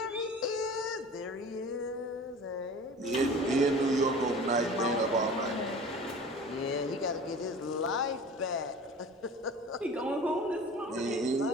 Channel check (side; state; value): both; normal; correlation 0.40